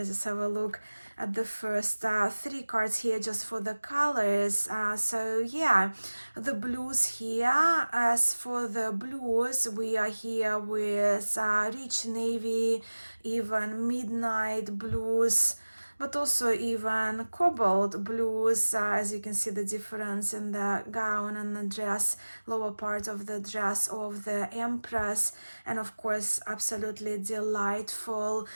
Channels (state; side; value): inverted; both; correlation -1.00